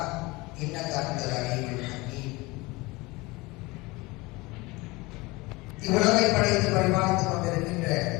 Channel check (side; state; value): right; quieter; 23.1 dB